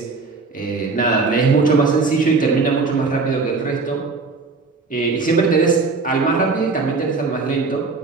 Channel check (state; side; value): quieter; left; 4.2 dB